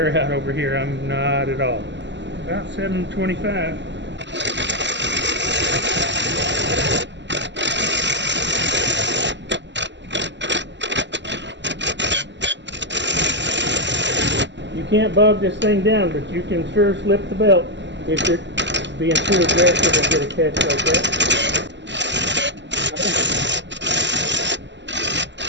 out over here. I'm not at all. About 725. You can't bog this thing down, but you can sure slip the belt if you're being too aggressive and get a catch like that.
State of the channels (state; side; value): late; left; 0.52 ms